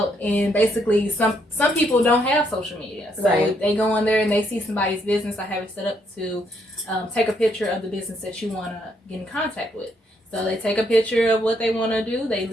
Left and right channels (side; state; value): both; normal; correlation 0.73